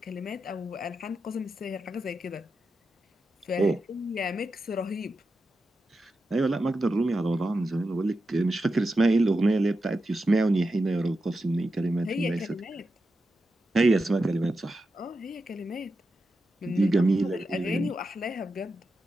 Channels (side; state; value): both; normal; correlation 0.89